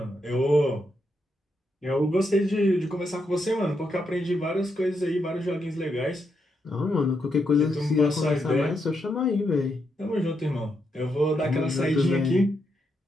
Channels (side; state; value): both; normal; correlation 0.81